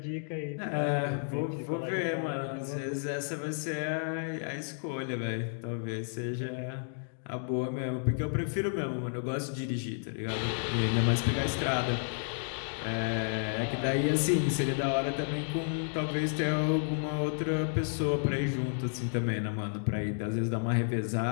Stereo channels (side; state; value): right; silent; digital silence